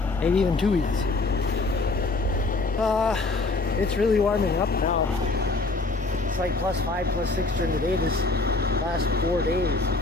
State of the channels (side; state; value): right; quieter; 3.4 dB